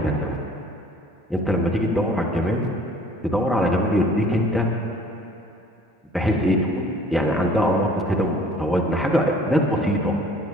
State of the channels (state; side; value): normal; both; correlation 0.52